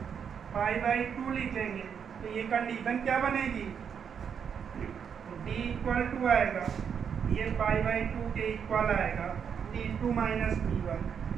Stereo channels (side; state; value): left; quieter; 7.3 dB